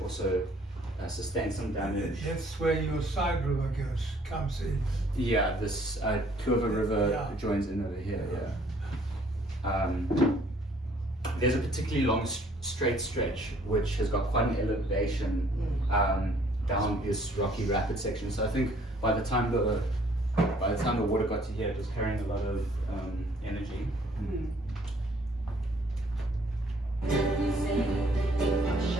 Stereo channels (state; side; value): normal; both; correlation 0.60